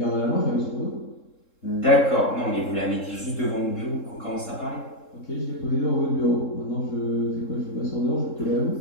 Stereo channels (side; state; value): right; late; 3.7 ms